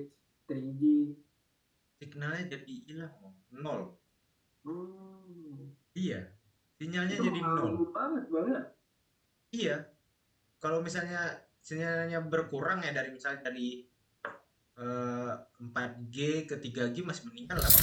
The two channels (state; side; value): identical; both; correlation 1.00